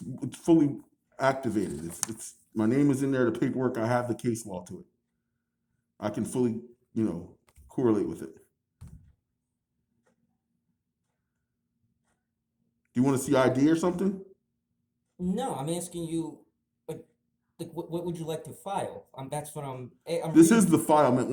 fully activated. It's my name is in there. The paperwork. I have the case law to it. I can fully, correlate with it. Do you want to see ID or something? No, I'm asking you, like what would you like to file? That's what I'm This is the file, man.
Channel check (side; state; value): both; identical; correlation 1.00